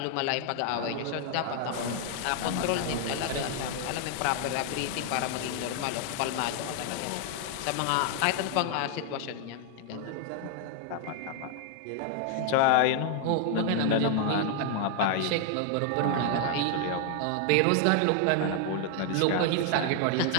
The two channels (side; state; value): both; different; correlation 0.00